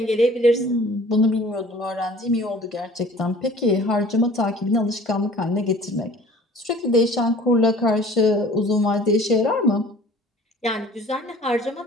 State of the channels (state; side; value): normal; both; correlation 0.48